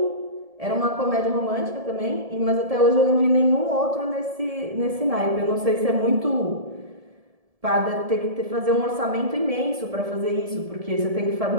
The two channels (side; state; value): left; late; 1.7 ms